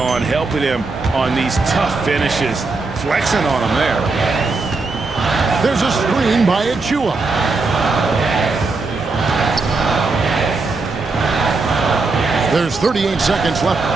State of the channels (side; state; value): left; quieter; 3.8 dB